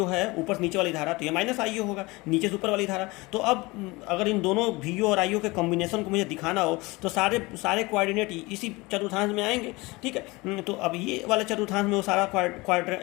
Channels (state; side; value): quieter; right; 23.3 dB